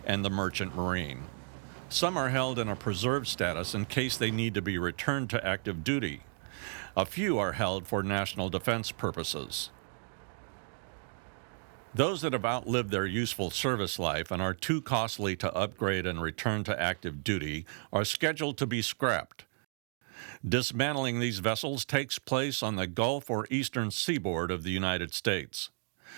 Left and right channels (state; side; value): silent; left; 56 dB below the other